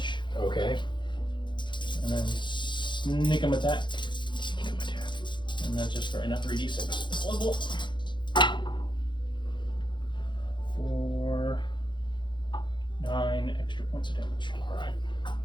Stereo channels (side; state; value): right; late; 0.23 ms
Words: Okay. and then sneak 'em attack. And that's just right now 3d6 this level. For 9 extra points of damage. Alright.